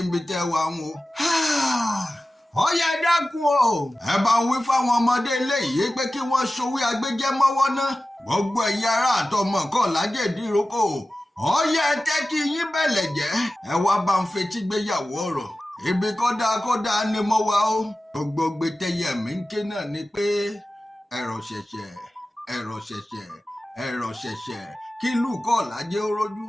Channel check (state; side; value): normal; both; correlation 0.95